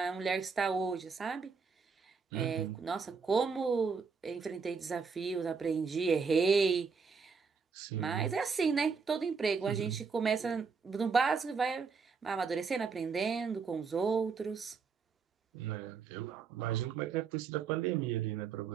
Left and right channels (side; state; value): left; quieter; 5.3 dB